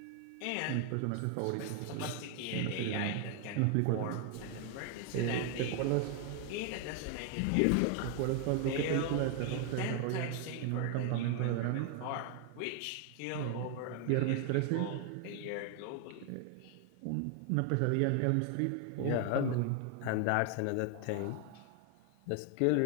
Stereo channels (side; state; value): both; different; correlation 0.00